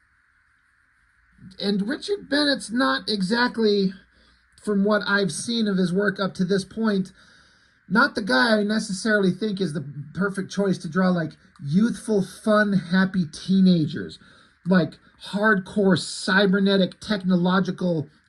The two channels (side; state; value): both; identical; correlation 1.00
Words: and Richard Bennett's not exactly, from what I've seen of his work up to this point, not the guy I necessarily think is the perfect choice to draw like youthful, fun, happy teenagers, like hardcore cybernetic technological